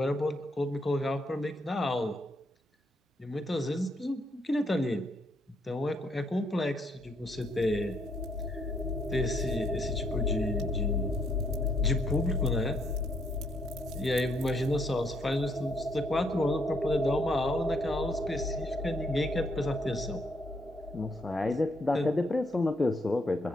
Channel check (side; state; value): both; normal; correlation 0.72